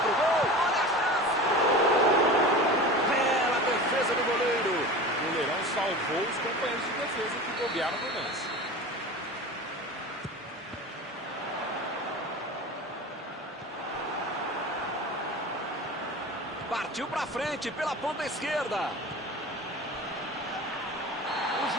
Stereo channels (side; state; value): both; normal; correlation 0.33